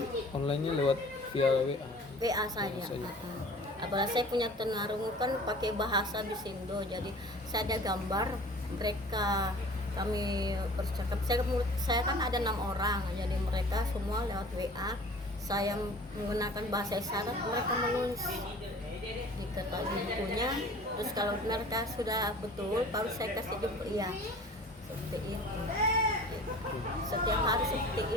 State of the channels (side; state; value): both; normal; correlation 0.45